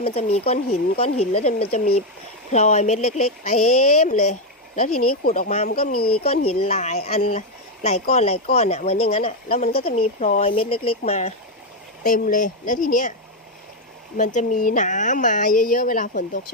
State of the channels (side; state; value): both; normal; correlation 0.04